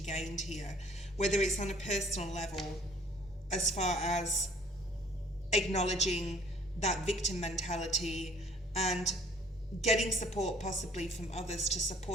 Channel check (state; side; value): normal; both; correlation 0.56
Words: here, whether it's on a personal level, as far as acknowledging that victim mentality and getting support possibly from others to